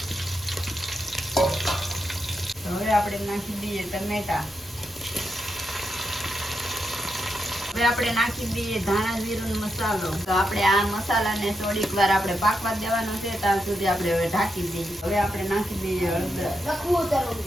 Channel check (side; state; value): both; normal; correlation 0.84